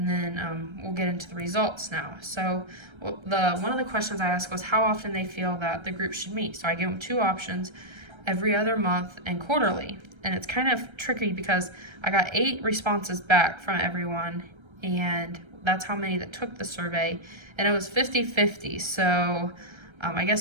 then we'll get into the results now. So one of the questions I asked was how often they feel that the group should meet. So I gave them two options, every other month and quarterly. And it's kind of tricky because I got 8 responses back from everyone, and that's how many that took the survey. And it was 50-50. So I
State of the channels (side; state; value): left; late; 1.3 ms